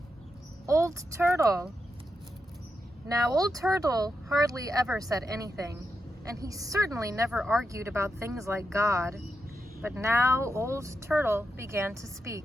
Old Turtle. Now, Old Turtle hardly ever said anything, and he certainly never argued about things like God. But now Old Turtle began to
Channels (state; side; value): normal; both; correlation 0.86